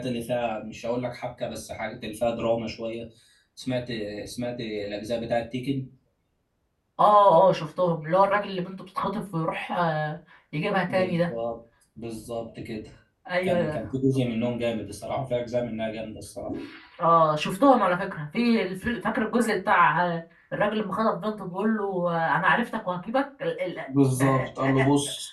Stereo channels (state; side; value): identical; both; correlation 1.00